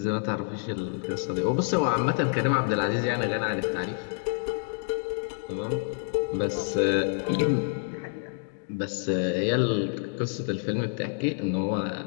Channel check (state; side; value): silent; right; 59 dB below the other